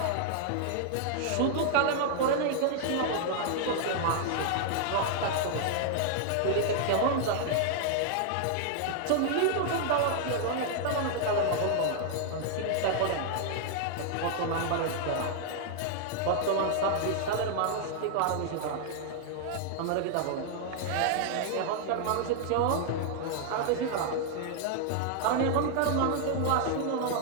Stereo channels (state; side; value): different; both; correlation 0.00